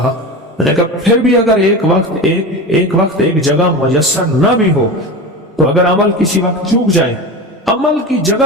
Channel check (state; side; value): normal; both; correlation 0.26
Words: میں نے کہا پھر بھی اگر ایک وقت ایک جگہ میسر نہ بھی ہو تو اگر عمل کسی وقت چوک جائے، عمل کی